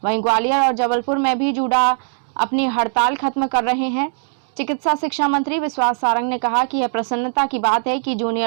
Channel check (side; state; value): left; silent; 66 dB below the other